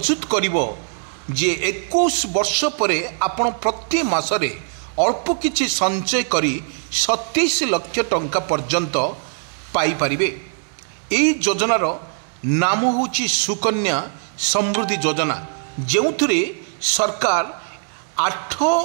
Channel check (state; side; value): silent; left; digital silence